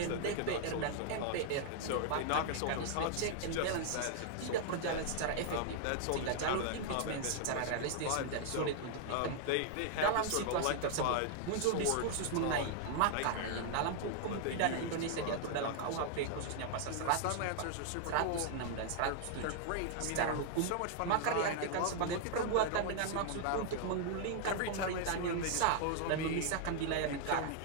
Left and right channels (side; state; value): both; different; correlation 0.00